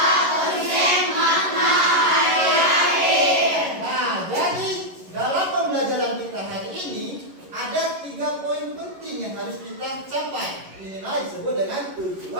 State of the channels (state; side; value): late; left; 11 ms